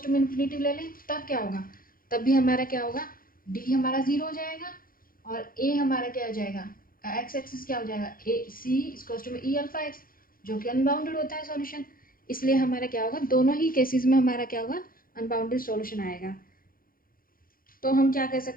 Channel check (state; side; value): late; right; 0.42 ms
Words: टू में इन्फिनिटी ले लें तब क्या होगा, तब भी हमारा क्या होगा, डी हमारा 0 हो जाएगा, और ए हमारा क्या हो जाएगा, एक्स एक्सिस क्या हो जाएगा, ए सी इक्वल्स टू में ई अल्फा एक्स, जो कि अनबाउंडेड होता है सॉल्यूशन। इसलिए हमारा क्या होगा, दोनों ही केसेस में हमारा क्या होगा, अनबाउंडेड सॉल्यूशन आएगा। तो हम क्या कह